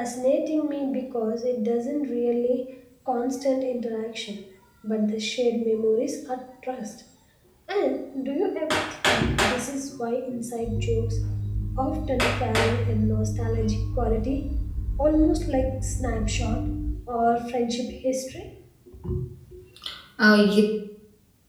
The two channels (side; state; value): both; identical; correlation 1.00